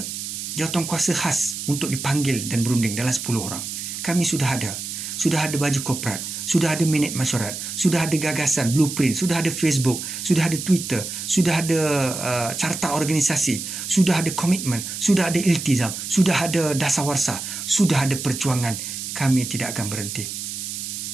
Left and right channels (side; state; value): right; noise; hiss, 6 dB below the sound